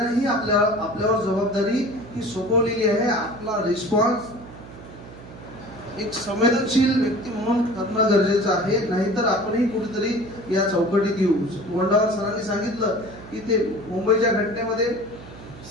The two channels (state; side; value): noise; right; hum, 16 dB below the sound